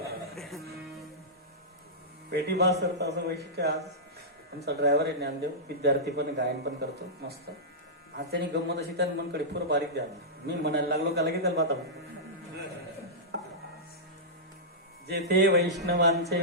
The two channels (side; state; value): both; normal; correlation -0.14